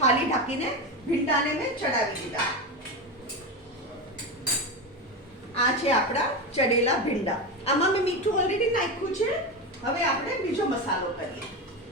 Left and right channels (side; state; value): both; normal; correlation 0.18